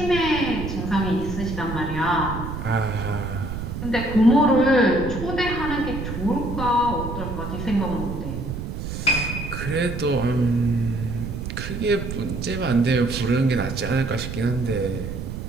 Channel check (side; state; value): right; noise; rumble, 6 dB below the sound